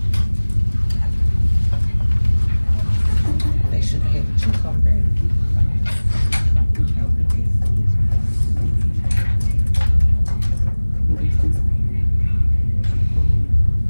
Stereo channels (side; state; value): both; inverted; correlation -1.00